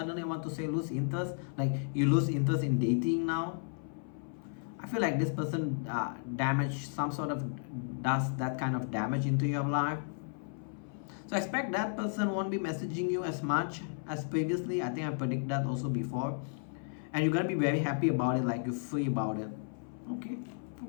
want to say lose interest, like you lose interest in dating now. I feel like this person does that kind of damage into your life. So expect that person won't be messaging you as much as previously. I think I predict that also before. And you're gonna be very happy about it, like you're free about it.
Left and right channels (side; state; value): right; silent; 55 dB below the other